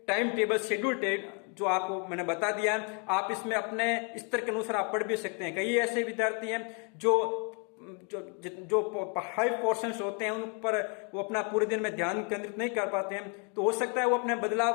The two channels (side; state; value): right; quieter; 36.7 dB